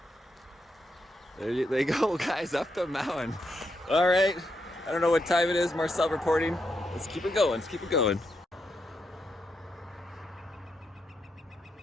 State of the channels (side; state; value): both; normal; correlation 0.82